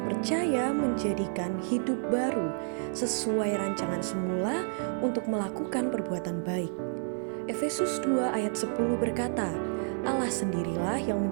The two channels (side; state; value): left; silent; digital silence